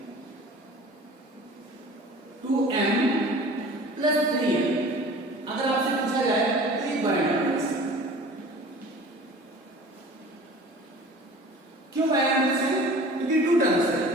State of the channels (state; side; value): normal; both; correlation 0.43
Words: 2m plus 3m अगर आपसे पूछा जाए तो एक बाइनॉमिनल्स है। क्यों बाइनॉमिनल्स है? क्योंकि 2 टर्म्स है,